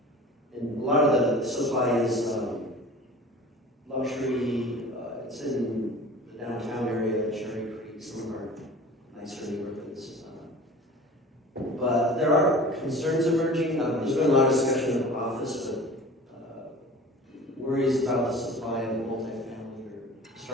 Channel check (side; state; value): both; normal; correlation 0.41